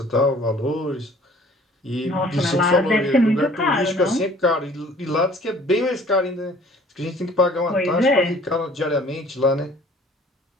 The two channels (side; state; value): both; normal; correlation 0.53